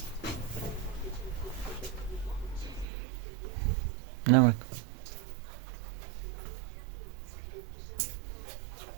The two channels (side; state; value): left; drops out; at 2.9 s